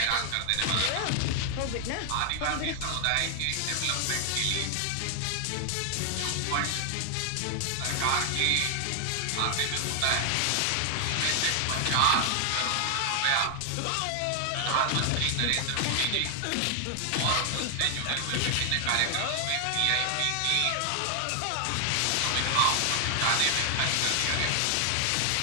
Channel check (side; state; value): both; different; correlation 0.00